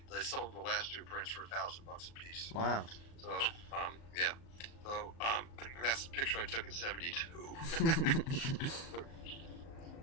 sold the last 2 prints for $1,000 a piece. Wow. So yeah. So that's the picture I took in '72.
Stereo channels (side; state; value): right; late; 36 ms